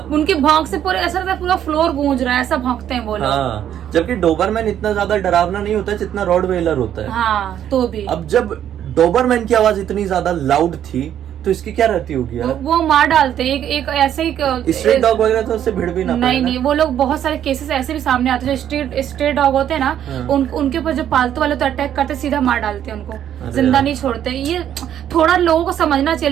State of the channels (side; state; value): left; quieter; 10.3 dB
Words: उनके भौंक से पूरे ऐसा लगता है पूरा फ्लोर गूंज रहा है, ऐसा भौंकते हैं वो लोग। हाँ, जबकि डोबरमैन इतना ज्यादा डरावना नहीं होता जितना रॉटवेलर होता है। हाँ, तो भी अब जब डोबरमैन की आवाज इतनी ज्यादा लाउड थी तो इसकी क्या रहती होगी यार? वो मार डालते हैं। एक ऐसे ही स्ट्रीट डॉग वगैरह तो उससे भिड़ भी ना पाए ना। नहीं, वो लोग बहुत सारे केसेस ऐसे भी सामने आते हैं, जो स्ट्रीट डॉग होते हैं ना, हाँ। उनके ऊपर जो पालतू वाले तो अटैक करते, सीधा मार डालते हैं उनको, अरे जिंदा यार। नहीं छोड़ते। ये थोड़ा लोगों को समझना चाहिए,